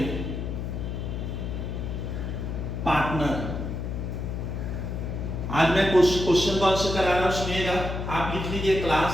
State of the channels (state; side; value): noise; left; hum, 4 dB below the sound